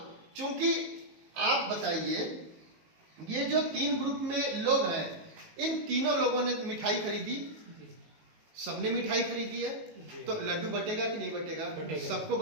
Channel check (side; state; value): left; late; 19 ms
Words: चूंकि आप बताइए, ये जो 3 ग्रुप में लोग हैं, इन तीनों लोगों ने मिठाई खरीदी, सबने मिठाई खरीदी है, तो लड्डू बटेगा कि नहीं बटेगा? सबको